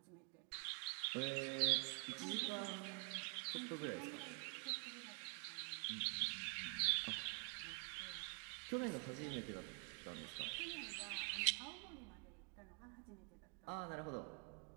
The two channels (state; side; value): quieter; left; 36.1 dB